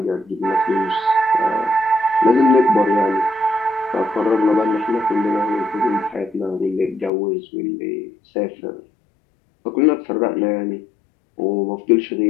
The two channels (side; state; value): right; drops out; at 7.1 s